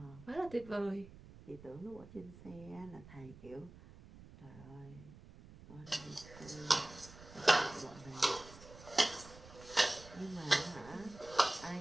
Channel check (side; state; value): right; noise; rumble, 18 dB below the sound